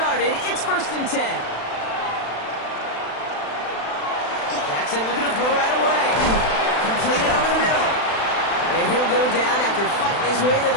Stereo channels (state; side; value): late; right; 36 ms